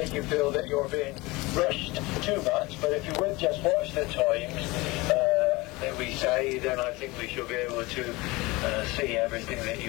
you feel that you're being rushed too much, but if you would just watch the times that we say, then I think we should be able to see everything that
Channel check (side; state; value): right; quieter; 22.5 dB